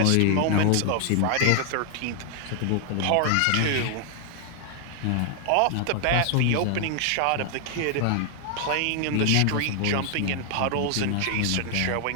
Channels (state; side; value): different; both; correlation 0.00